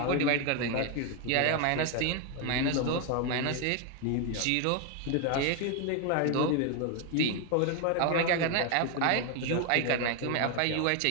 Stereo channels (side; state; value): both; different; correlation 0.01